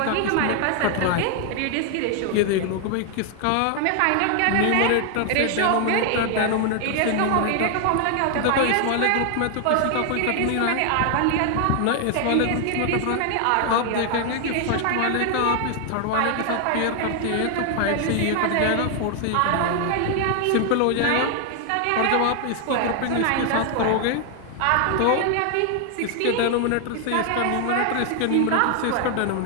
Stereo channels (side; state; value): both; different; correlation 0.00